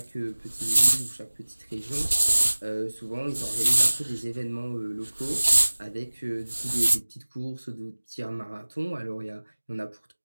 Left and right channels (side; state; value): both; inverted; correlation -1.00